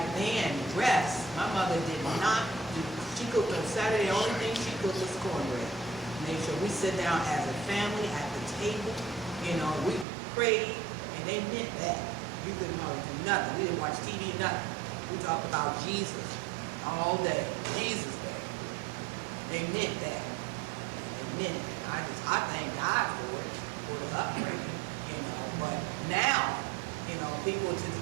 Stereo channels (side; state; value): left; drops out; at 10.1 s